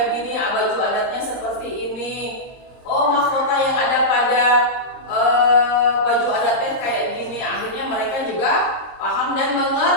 gini, baju adatnya seperti ini. Mahkota yang ada pada baju adatnya kayak gini. Akhirnya mereka juga paham dan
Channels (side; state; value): right; late; 23 ms